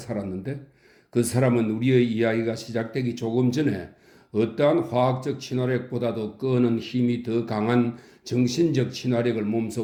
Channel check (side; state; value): both; identical; correlation 1.00